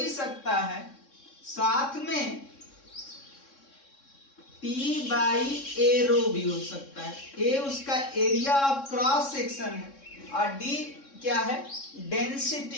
सकता है, साथ में T/a रो भी हो सकता है। A उसका एरिया ऑफ क्रॉस सेक्शन है और D क्या है,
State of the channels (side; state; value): right; late; 3.6 ms